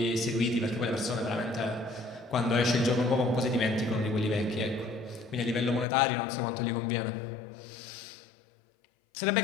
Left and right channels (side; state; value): right; drops out; at 5.9 s